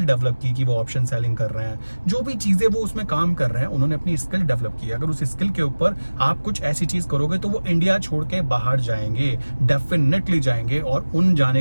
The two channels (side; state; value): both; inverted; correlation -1.00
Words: डेवलप की कि वो ऑप्शन सेलिंग कर रहे हैं, जो भी चीजें वो उसमें काम कर रहे हैं, उन्होंने अपनी स्किल डेवलप की। अगर उस स्किल के ऊपर आप कुछ ऐसी चीज करोगे तो वो इंडिया छोड़ के बाहर जाएंगे, डेफिनेटली जाएंगे। और उन